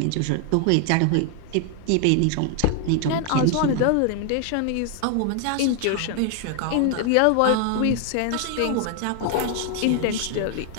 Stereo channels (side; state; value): both; different; correlation 0.00